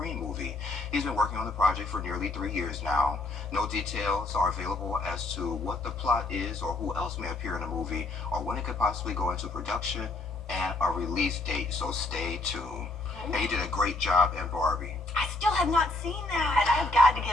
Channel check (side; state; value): right; quieter; 3.0 dB